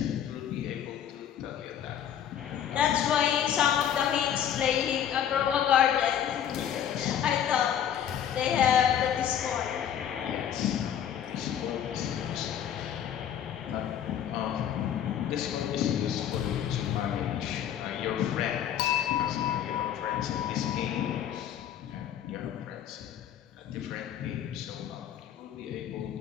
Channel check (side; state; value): right; quieter; 9.6 dB